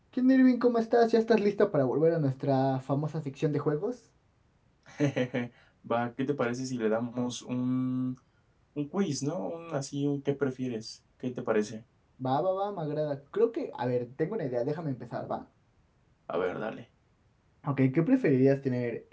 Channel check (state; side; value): identical; both; correlation 1.00